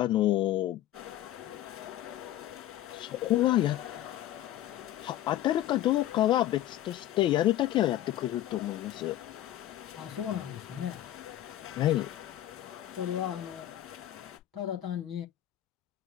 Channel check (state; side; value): quieter; right; 13.4 dB